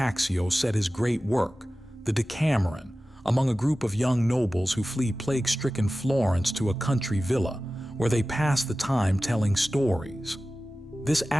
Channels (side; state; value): both; normal; correlation 0.96